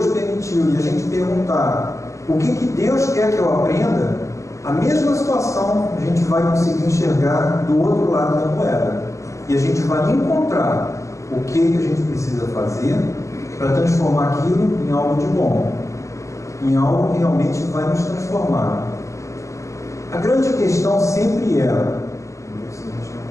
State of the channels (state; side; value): late; right; 0.15 ms